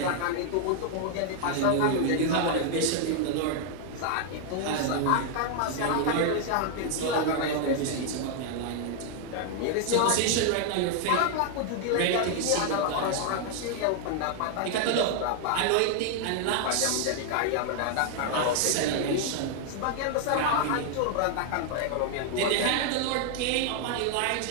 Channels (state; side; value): different; both; correlation 0.00